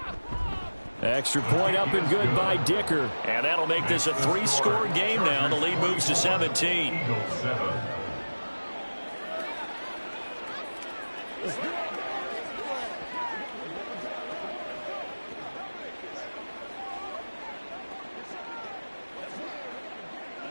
Extra point up and good by Dicker. And that'll make this a 3-score game now. The lead moves to 17. Eagles 7.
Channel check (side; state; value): both; inverted; correlation -1.00